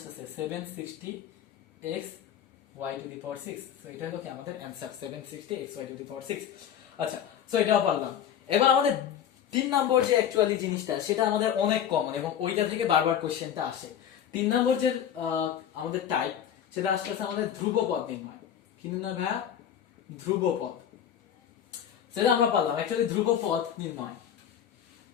760x y to the power 6। So এটা হলো কি আমাদের answer 760x y to the power 6। আচ্ছা সো এটাও পারলাম। এবার আমাদের 3 নম্বর যে অ্যাকচুয়ালি জিনিসটা সেটা আমাদের অনেক কমন এবং ওইটা থেকে বারবার কোশ্চেনটা আসে। 3 নম্বর যে আমাদের টাইপ সেটা আসছে আমাদের ধ্রুবপদ নির্ণয়। কি নির্ণয় ভাই? ধ্রুবপদ। সেটা আমরা পারলাম অ্যাকচুয়ালি ধ্রুবপদ নির্ণয়।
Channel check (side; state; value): right; quieter; 9.5 dB